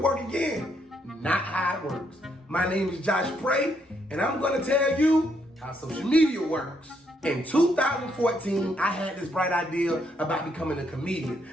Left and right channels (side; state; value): both; normal; correlation 0.74